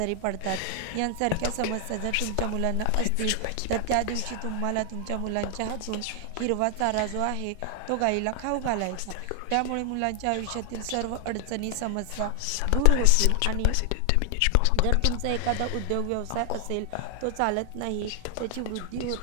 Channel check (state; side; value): different; both; correlation 0.00